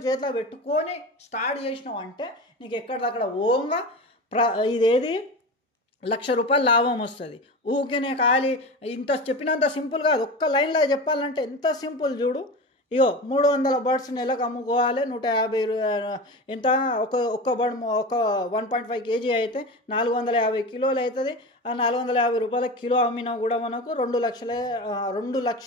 చేతిలో పెట్టుకొని స్టార్ట్ చేసినావు అంటే నీకు ఎక్కడిదక్కడ ఓంగా ఇదేది 1,00,000 రూపాయలు లాభం వస్తుంది. ఊకేనే ఖాళీ ఇంత చెప్పినంత సింపుల్ కాదు. ఒక్క లైన్లో చెప్పాలంటే ఎంత సింపుల్ చూడు. ఇగో 300 బర్డ్స్ నెలకు అమ్ముకోవాలి, 150 ఎంత ఒక్క బర్డ్ ఒక 1.5 kg అయితే 450 కిలోలు అవుతుంది. ఆ 450 రూపాయల కిలో అమ్మినా కూడా మనకు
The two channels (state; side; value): normal; both; correlation 0.28